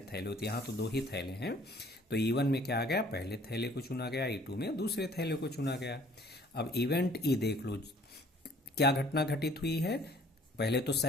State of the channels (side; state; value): both; normal; correlation 0.56